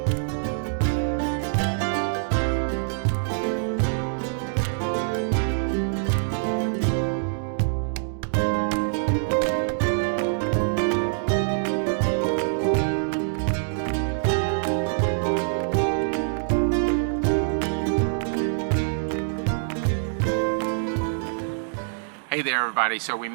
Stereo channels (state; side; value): silent; left; digital silence